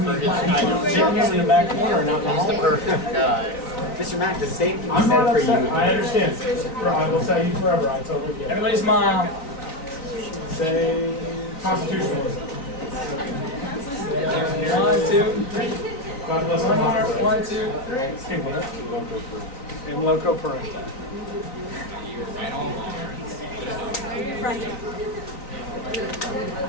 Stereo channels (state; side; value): late; right; 3.9 ms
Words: for his Sitting here in the back corner, not he's the perfect guy. Mr. Mack, the same thing I'm said not for you. upset. I understand. I will tell you forever. I totally get it. Everybody smile. Say constitutionalism. 1, 2, 3. God bless One more. America. 1, 2, 3. In loco parentis.